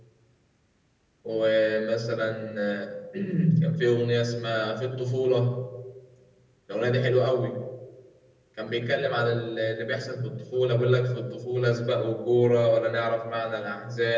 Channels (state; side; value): identical; both; correlation 1.00